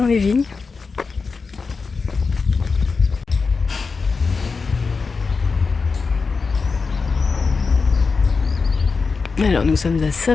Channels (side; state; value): right; quieter; 4.7 dB